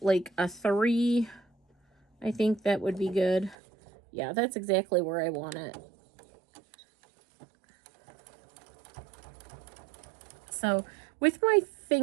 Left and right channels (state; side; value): drops out; left; at 3.6 s